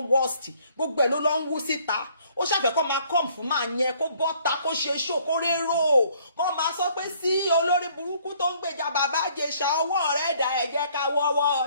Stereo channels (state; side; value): inverted; both; correlation -0.62